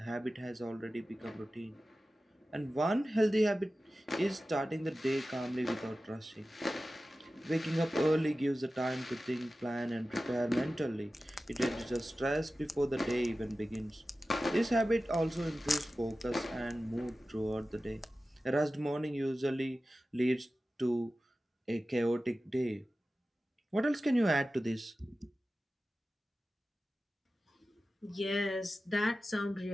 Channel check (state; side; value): normal; both; correlation 0.95